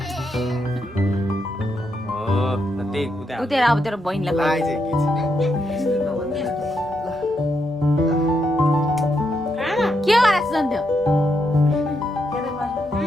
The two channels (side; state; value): both; normal; correlation 0.80